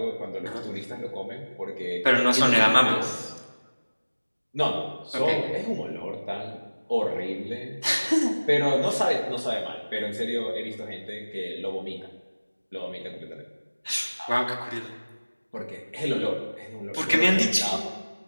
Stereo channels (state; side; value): inverted; both; correlation -1.00